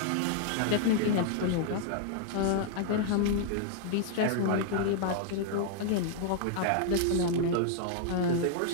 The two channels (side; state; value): both; different; correlation 0.00